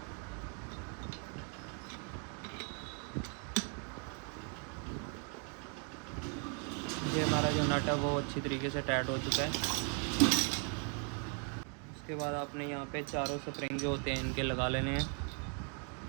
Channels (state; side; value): quieter; left; 39.5 dB